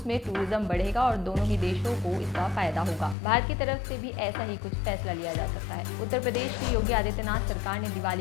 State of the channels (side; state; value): right; drops out; at 3.2 s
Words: में टूरिज्म बढ़ेगा और दोनों ही देशों को इसका फायदा होगा। भारत की तरफ से भी ऐसा ही कुछ फैसला लिया जा सकता है। उत्तर प्रदेश की योगी आदित्यनाथ सरकार ने